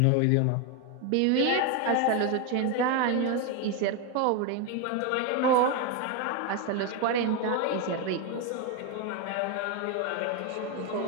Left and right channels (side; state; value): both; different; correlation 0.02